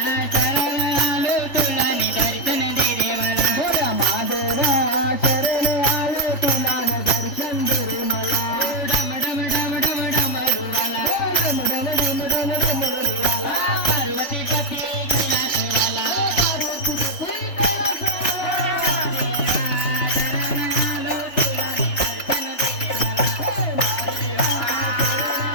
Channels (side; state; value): right; late; 3.4 ms